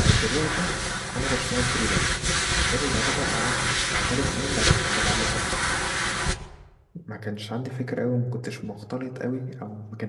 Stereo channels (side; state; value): both; identical; correlation 1.00